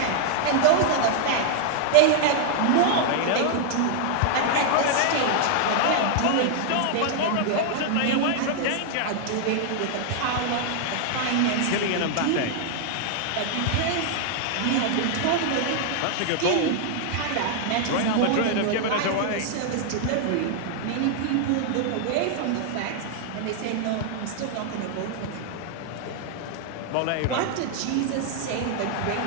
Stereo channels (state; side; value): different; both; correlation -0.01